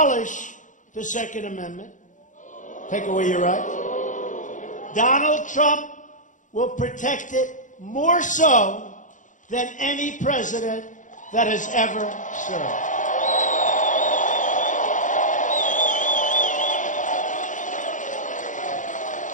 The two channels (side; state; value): right; late; 0.37 ms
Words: the Second Amendment, take away your rights. Donald Trump will protect it more so than any president that has ever served.